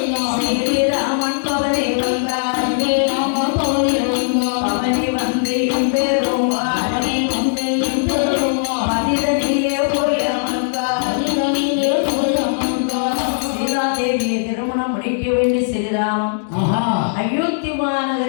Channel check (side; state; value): right; silent; digital silence